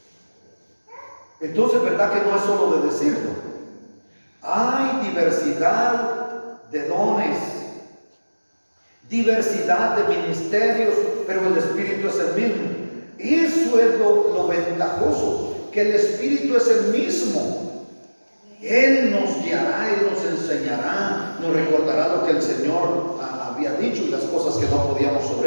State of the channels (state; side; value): inverted; both; correlation -1.00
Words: Entonces, ¿verdad que no es solo de decirlo? Hay diversidad de dones, diversidad de ministerios, pero el Espíritu es el mismo. Eso es lo ventajoso, que el Espíritu es el mismo. Él nos guiará, Él nos enseñará, nos recordará lo que el Señor había dicho y las cosas que no podíamos